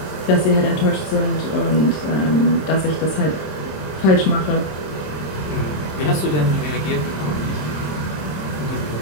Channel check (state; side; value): late; right; 26 ms